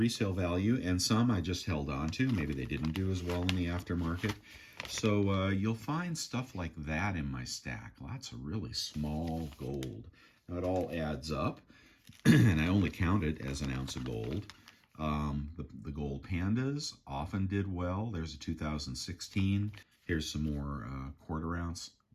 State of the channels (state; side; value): identical; both; correlation 1.00